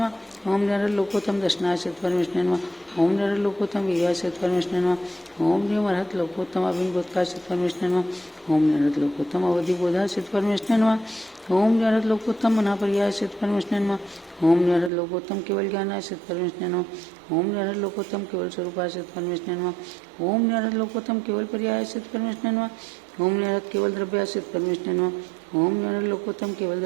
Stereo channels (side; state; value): left; drops out; at 14.9 s